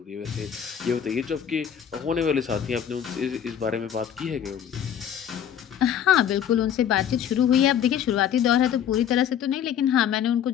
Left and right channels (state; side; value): quieter; right; 9.1 dB